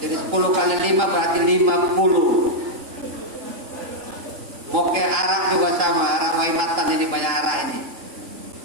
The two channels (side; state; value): left; late; 3.8 ms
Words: Jadi 10 kali 5 berarti 50. Moke arak juga sama, arak waimatan ini banyak arak ini.